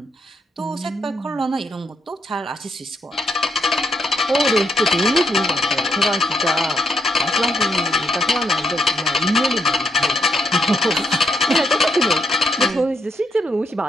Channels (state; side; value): normal; both; correlation 0.77